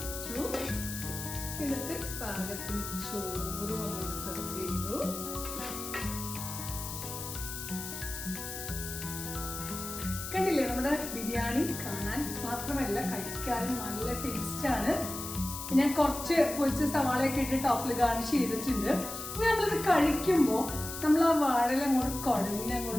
വെച്ചു. എന്നിട്ട് പാകത്തിന് ചോറ് അങ്ങോട്ട് സെർവ് ചെയ്തു. കണ്ടില്ലേ, നമ്മുടെ ബിരിയാണി കാണാൻ മാത്രമല്ല കഴിക്കാനും നല്ല ടേസ്റ്റ് ആണ്. ഞാൻ കുറച്ച് പൊരിച്ച സവാളയൊക്കെ ഇട്ട് ടോപ്പിൽ ഗാർണിഷ് ചെയ്തിട്ടുണ്ട്. ഇനി നമ്മളിത് കഴിക്കുമ്പോൾ നമ്മൾ ആ വാഴല അങ്ങോട്ട് കുഴഞ്ഞ്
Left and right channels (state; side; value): noise; left; hiss, 8 dB below the sound